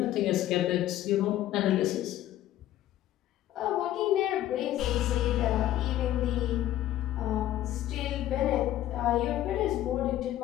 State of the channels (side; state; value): right; quieter; 13.3 dB